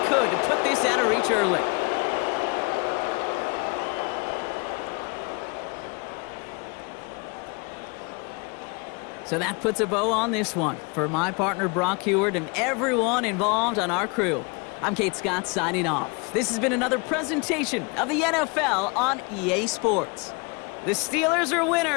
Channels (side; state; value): right; quieter; 30.6 dB